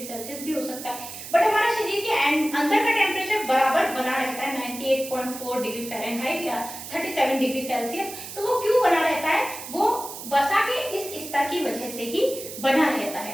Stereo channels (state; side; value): noise; right; hiss, 11 dB below the sound